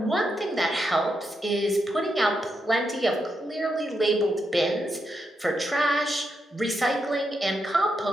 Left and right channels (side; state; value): both; normal; correlation 0.83